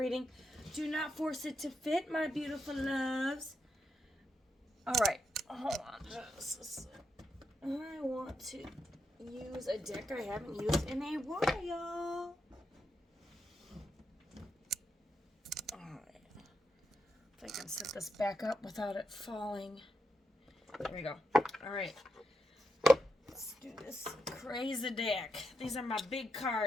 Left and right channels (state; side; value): normal; both; correlation 0.83